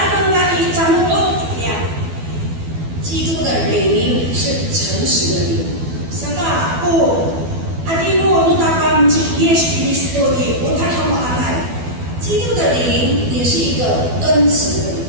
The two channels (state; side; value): late; left; 12 ms